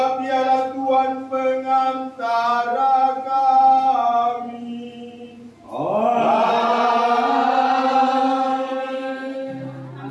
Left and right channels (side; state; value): both; identical; correlation 1.00